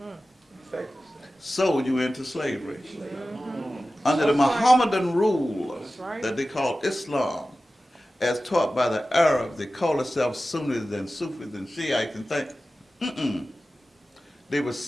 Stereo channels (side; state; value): both; normal; correlation 0.95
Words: Sold you into slavery. Under the Mohammedan rule that they call Islam, as taught by the Arabs, they call themselves Sunnis and Sufis and Shiites and things. They were